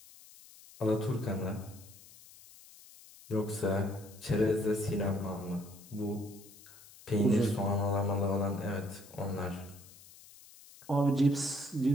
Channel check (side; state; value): left; noise; hiss, 21 dB below the sound